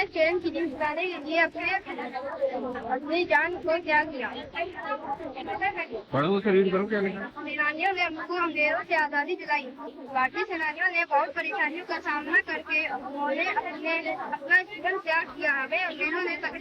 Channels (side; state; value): both; identical; correlation 1.00